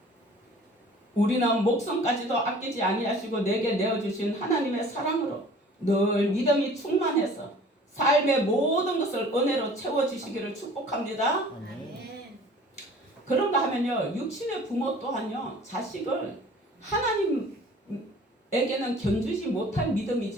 우리는 목숨까지도 아끼지 아니하시고 내게 내어주신 하나님의 사랑으로 늘 믿음이 충만해서 삶의 모든 것을 은혜로 채워주시기를 축복합니다. 아멘. 그런가 하면요, 육신의 부모 또한요, 자식을 하나님에게는 견주지 못할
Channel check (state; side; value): normal; both; correlation 0.48